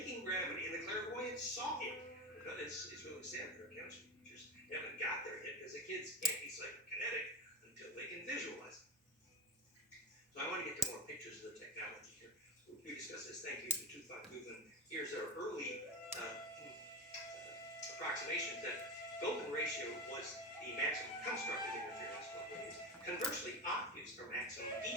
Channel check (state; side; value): normal; both; correlation 0.23